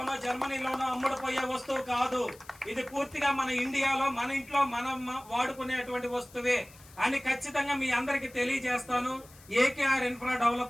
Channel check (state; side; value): noise; left; hiss, 23 dB below the sound